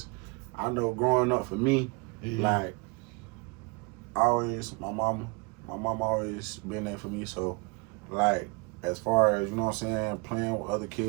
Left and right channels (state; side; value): quieter; left; 30.0 dB